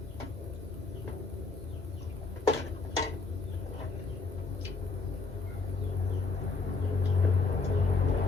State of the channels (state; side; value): quieter; right; 4.1 dB